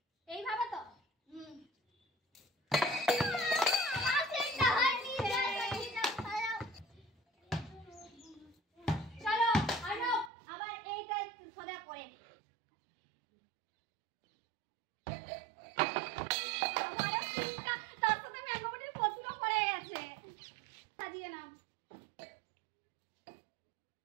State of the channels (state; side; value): drops out; left; at 10.3 s